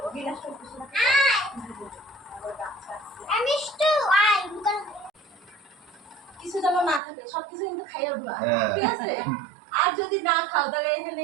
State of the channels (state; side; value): drops out; left; at 7.0 s